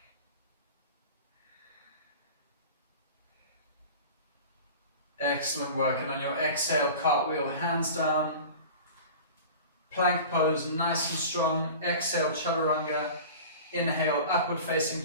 Excellent work. And on your exhale, cartwheel, hands down. Plank pose, nice and strong. Exhale, chaturanga. Inhale, upward facing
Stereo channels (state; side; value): inverted; both; correlation -0.37